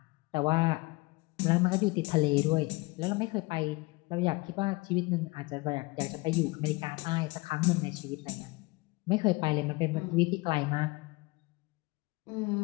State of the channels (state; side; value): quieter; right; 24.3 dB